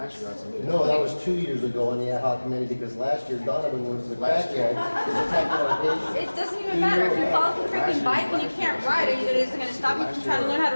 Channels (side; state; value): both; inverted; correlation -1.00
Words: year I submitted. No, that was 2 years ago on the ad hoc committee, because last year Donovan was the crackhead. It doesn't even matter. If you fall off a freaking bike and you can't ride, is it going to stop you from trying to learn how to